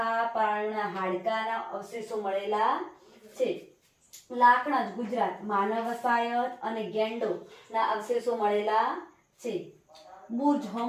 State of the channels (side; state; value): both; identical; correlation 1.00